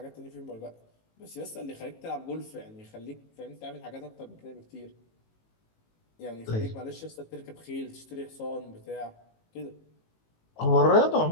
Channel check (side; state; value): right; late; 18 ms